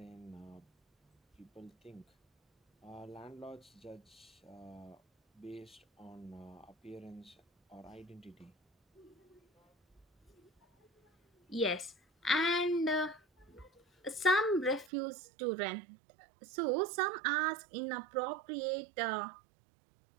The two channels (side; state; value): left; drops out; at 14.9 s